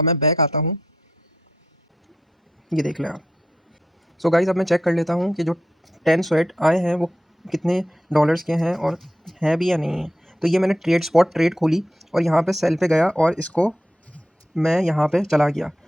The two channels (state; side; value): normal; both; correlation 0.84